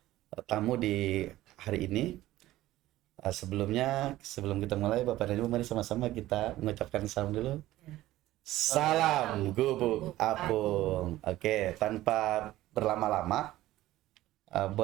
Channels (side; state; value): left; quieter; 15.6 dB